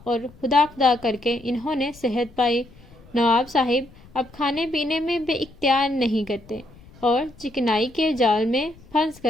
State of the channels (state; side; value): noise; left; rumble, 24 dB below the sound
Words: اور خدا خدا کر کے انہوں نے صحت پائی۔ نواب صاحب اب کھانے پینے میں بے اختیار نہیں کرتے اور چکنائی کے جال میں پھنس